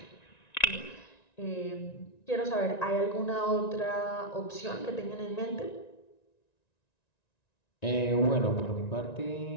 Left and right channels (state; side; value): late; right; 1.9 ms